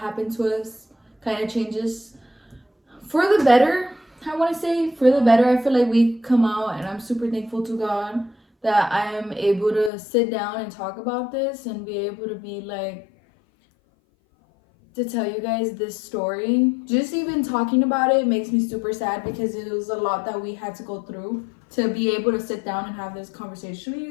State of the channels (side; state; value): right; drops out; at 9.9 s